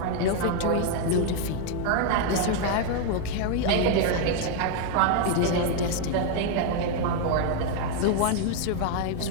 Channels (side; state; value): both; different; correlation 0.00